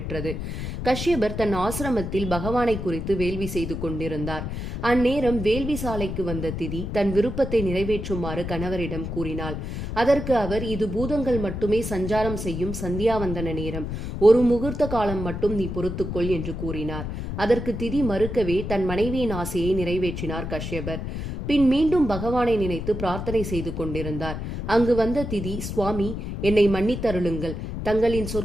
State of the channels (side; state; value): left; noise; rumble, 5 dB below the sound